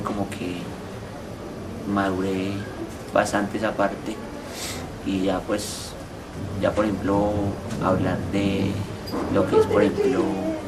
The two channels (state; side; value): identical; both; correlation 1.00